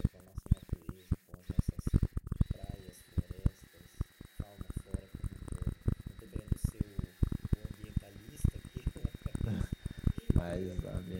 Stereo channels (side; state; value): both; identical; correlation 1.00